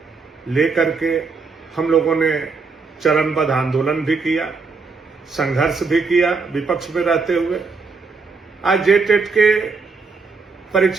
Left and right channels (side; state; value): left; quieter; 4.5 dB